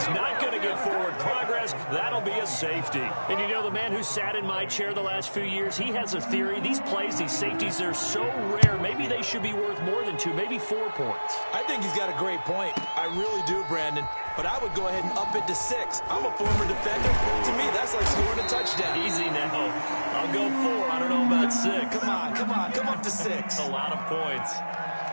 not going to get forward progress. That'll be a safety. And you know, the man who sat in my chair the last few years, he has a theory. These plays, these safeties, they're so rare. Maybe they should be worth more than 2, maybe 4 points. I think he's got a great point. I really do, Brandon. But I would go ahead and up it to 6. I'm a former defender. To me, that's like scoring a touchdown. Easy now. I'll go 4. I don't know about 6. Come up to 6. A lot of points.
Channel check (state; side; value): inverted; both; correlation -1.00